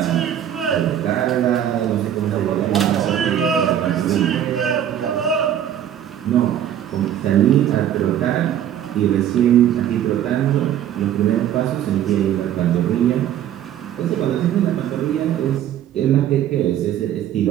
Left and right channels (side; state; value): left; quieter; 10.6 dB